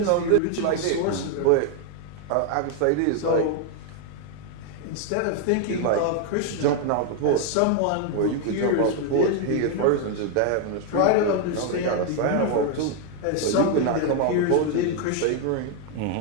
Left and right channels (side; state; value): both; different; correlation 0.01